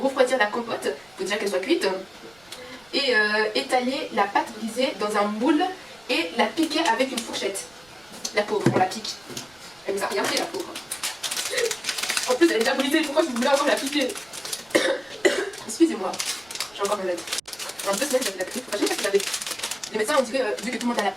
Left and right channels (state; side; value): noise; right; rumble, 30 dB below the sound